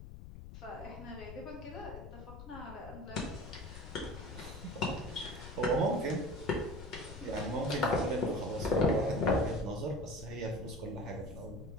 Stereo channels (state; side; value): noise; left; rumble, 12 dB below the sound